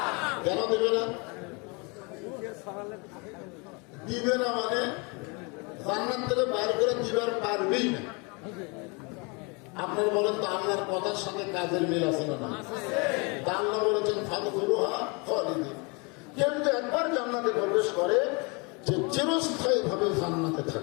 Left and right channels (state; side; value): quieter; right; 30.7 dB